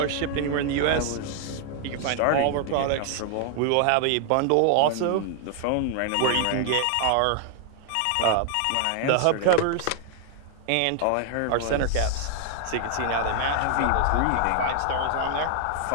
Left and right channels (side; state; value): both; different; correlation 0.00